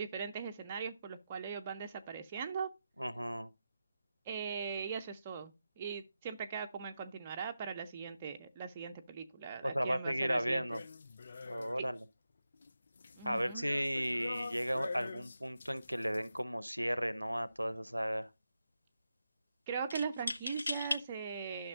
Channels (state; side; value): inverted; both; correlation -0.89